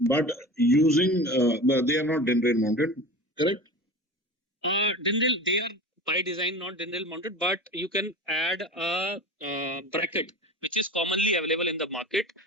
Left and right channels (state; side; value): normal; both; correlation 0.33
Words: using, they are not DIN rail mounted, correct? Dindle, they are by design not dindle mounted, but you can add a bracket which is commonly available in the market